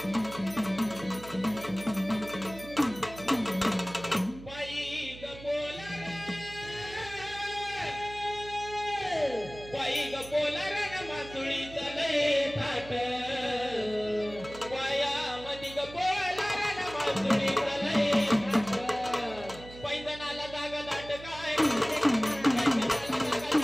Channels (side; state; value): right; noise; hum, 16 dB below the sound